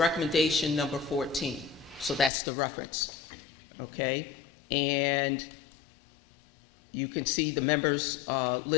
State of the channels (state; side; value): drops out; right; at 2.3 s